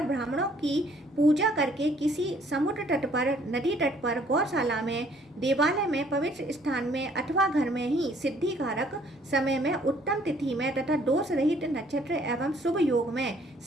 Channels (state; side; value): normal; both; correlation 0.61